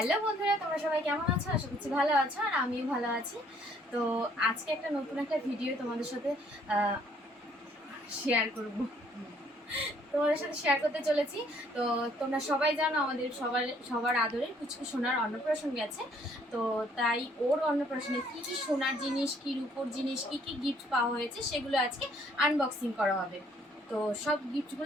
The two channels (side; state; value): both; normal; correlation 0.63